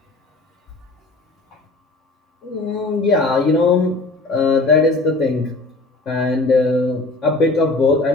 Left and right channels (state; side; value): quieter; right; 3.2 dB